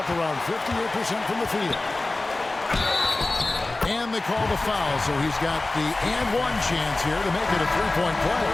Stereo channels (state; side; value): quieter; right; 3.0 dB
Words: around 58% from the field. And they call the foul, so he's got the and-one chance here to make it a 3-point play.